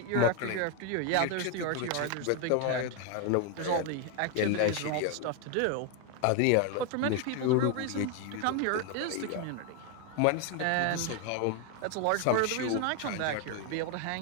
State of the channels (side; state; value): both; different; correlation 0.01